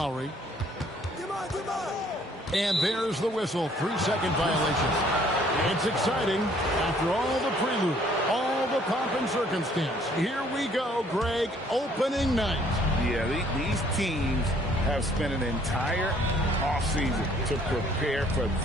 And there's the whistle, 3-second violation. It's exciting after all the prelude, all the pomp and circumstance. Here we go, Greg, opening night. Yeah, these teams have spent an entire offseason to prepare for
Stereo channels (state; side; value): normal; both; correlation 0.61